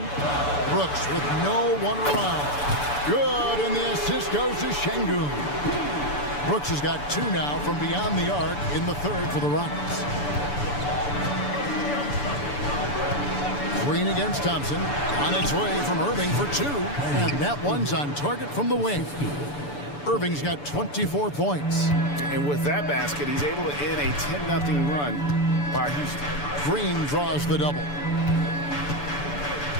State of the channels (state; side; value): late; right; 6.9 ms